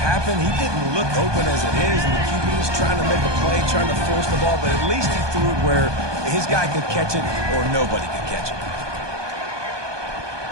He didn't look open as it is, and the QB's trying to make a play, trying to force the ball, but at least he threw it where his guy could catch it or nobody could catch it.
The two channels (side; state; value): left; late; 1.2 ms